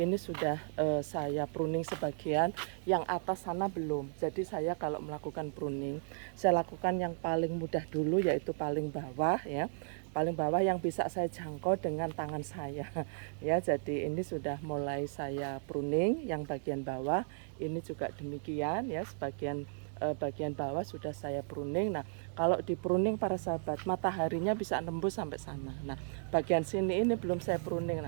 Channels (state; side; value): silent; left; digital silence